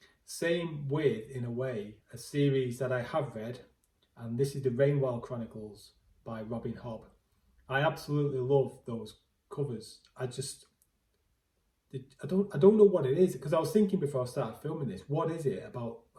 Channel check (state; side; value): identical; both; correlation 1.00